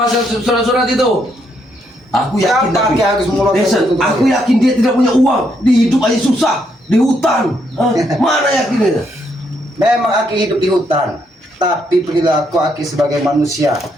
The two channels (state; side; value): normal; both; correlation 0.75